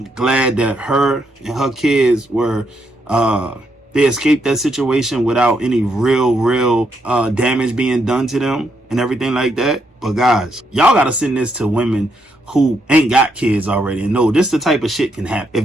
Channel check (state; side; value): normal; both; correlation 0.77